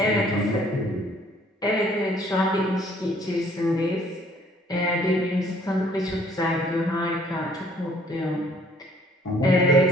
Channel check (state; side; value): normal; both; correlation 0.59